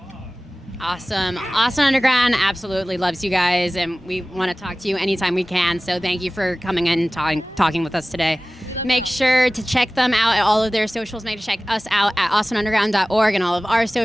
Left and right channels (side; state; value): both; normal; correlation 0.97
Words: Awesome. Austin Underground absolutely loves you guys, and we want to talk to you anytime we can. So thank you for coming in and talking with us today. Make sure to check them out at all of their socials. Make sure to check us out at austinunderground.org and all of our